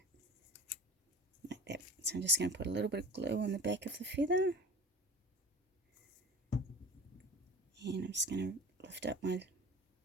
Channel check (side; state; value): both; normal; correlation 0.38